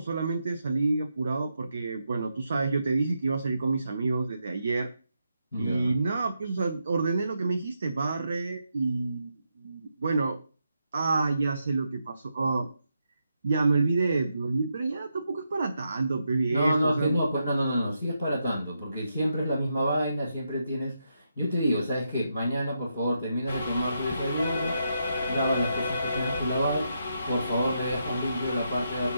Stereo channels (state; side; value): inverted; both; correlation -0.82